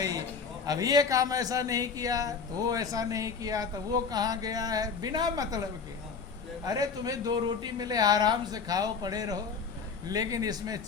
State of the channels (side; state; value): right; quieter; 5.5 dB